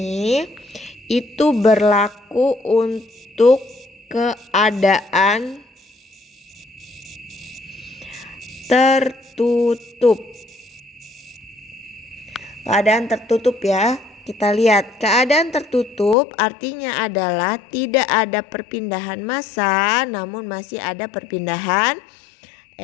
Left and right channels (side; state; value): right; drops out; at 16.2 s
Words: itu berlaku untuk keadaan tertutup. Keadaan tertutup ya. Kita lihat keadaan tertutup artinya adalah tidak ada perpindahan massa, namun masih ada perpindahan